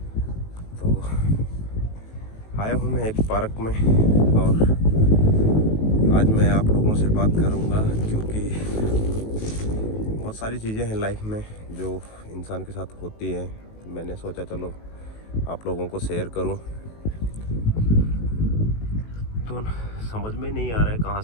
तो आया हूँ मैं एक पार्क में और आज मैं आप लोगों से बात करूँगा क्योंकि बहुत सारी चीज़ें हैं लाइफ में जो इंसान के साथ होती हैं। मैंने सोचा चलो आप लोगों को शेयर करूँ। तो समझ में नहीं आ रहा है कहाँ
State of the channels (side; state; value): right; late; 19 ms